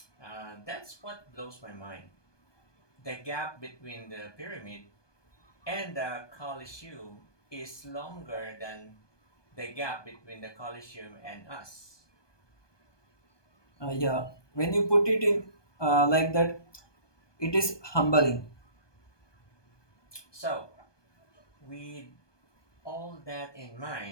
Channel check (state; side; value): late; right; 1.2 ms